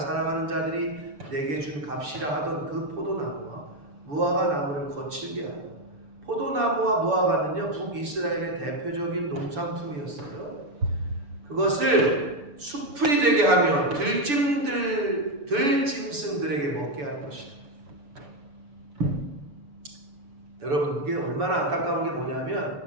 사랑하는 자들이 내게 준 값이라 하던 그 포도나무와 무화과 나무를 거칠게 하여. 포도나무와 무화과는요 북이스라엘의 대표적인 농산품이었어요. 그것을 수풀이 되게 하며 들짐승들에게 먹게 할 것이다. 여러분 이게 얼마나 안타까운 게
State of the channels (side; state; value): left; late; 6.9 ms